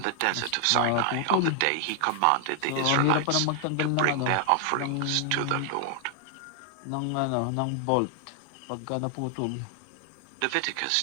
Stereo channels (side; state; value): both; different; correlation 0.00